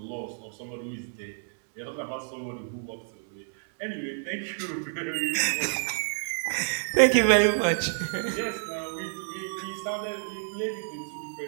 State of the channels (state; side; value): silent; left; digital silence